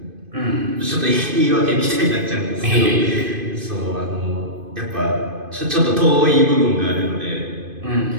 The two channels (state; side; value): late; left; 2.5 ms